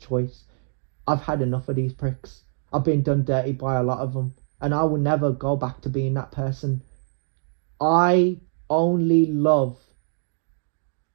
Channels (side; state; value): left; silent; 62 dB below the other